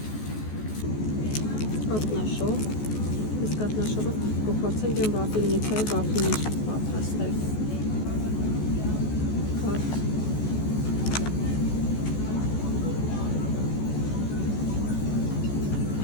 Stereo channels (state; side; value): late; right; 14 ms